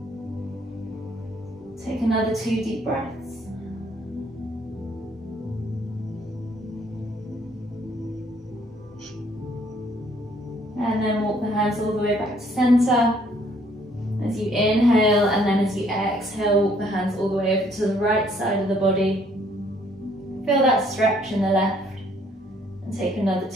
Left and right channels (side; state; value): both; normal; correlation 0.64